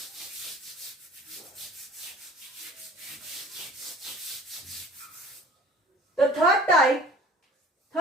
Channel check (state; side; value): normal; both; correlation 0.48